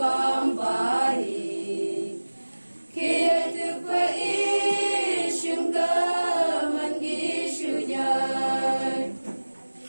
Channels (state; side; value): inverted; both; correlation -1.00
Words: bài khi từ quê ý sương cờ mình ghi sự nhờ